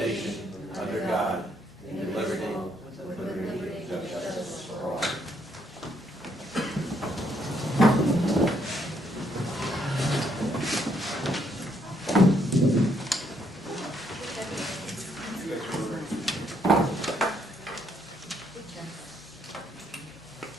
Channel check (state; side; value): normal; both; correlation 0.72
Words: under God, in liberty and justice for all.